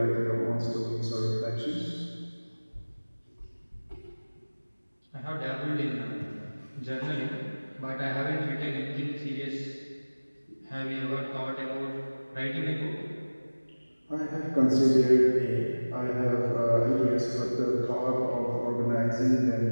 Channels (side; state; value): both; inverted; correlation -1.00